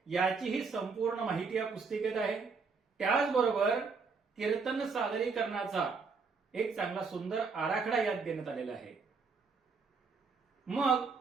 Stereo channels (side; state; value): left; quieter; 4.8 dB